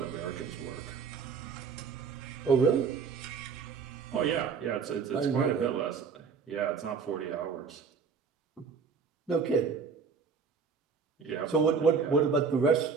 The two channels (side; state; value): left; quieter; 5.6 dB